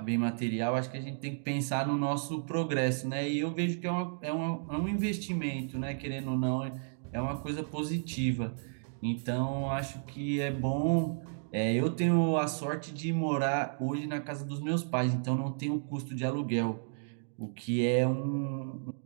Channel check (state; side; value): silent; left; digital silence